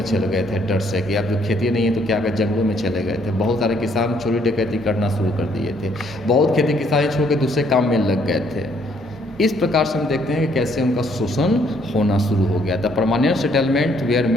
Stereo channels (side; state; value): both; normal; correlation 0.67